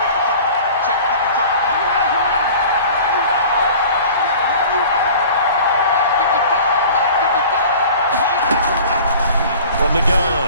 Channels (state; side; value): inverted; both; correlation -0.43